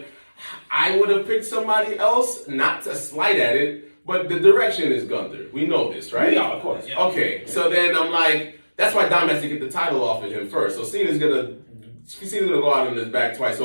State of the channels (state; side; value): inverted; both; correlation -1.00